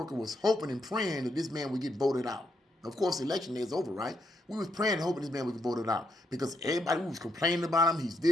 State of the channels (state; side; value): normal; both; correlation 0.78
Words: was hoping and praying that this man would get voted out. Of course, the election day is over, right? We was praying and hoping this man would get voted out because everybody was complaining about him. He's